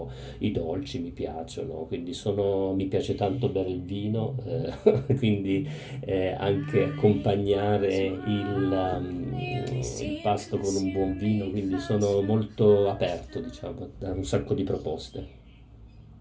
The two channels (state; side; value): identical; both; correlation 1.00